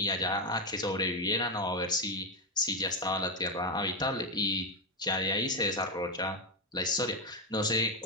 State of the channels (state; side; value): normal; both; correlation 0.09